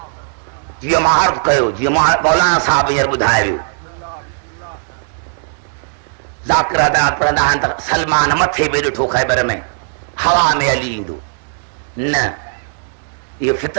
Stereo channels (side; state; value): left; silent; digital silence